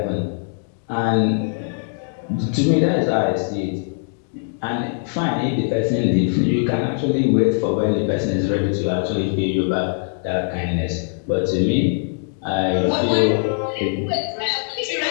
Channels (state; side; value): silent; right; digital silence